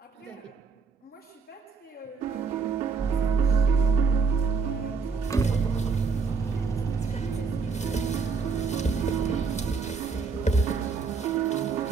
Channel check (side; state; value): left; quieter; 5.0 dB